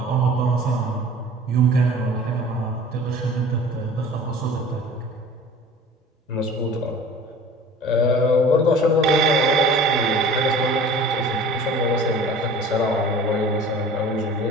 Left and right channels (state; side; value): normal; both; correlation 0.44